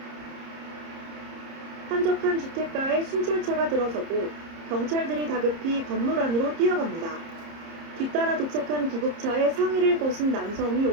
한적한 주택가에 순찰차가 들어서고 경찰들이 다급히 건물 안으로 뛰어갑니다. 뒤따라 도착한 구급차에 상의를 벗은 남성이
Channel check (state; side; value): late; left; 30 ms